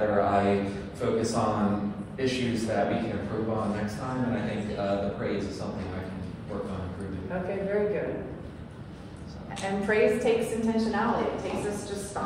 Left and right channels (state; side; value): identical; both; correlation 1.00